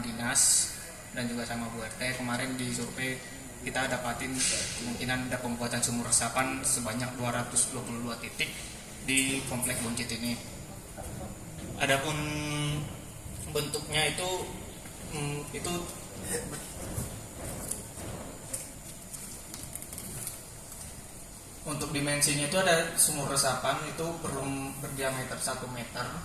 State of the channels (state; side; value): identical; both; correlation 1.00